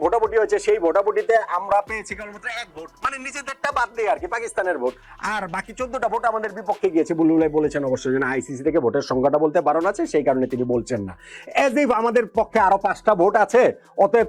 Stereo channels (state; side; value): identical; both; correlation 1.00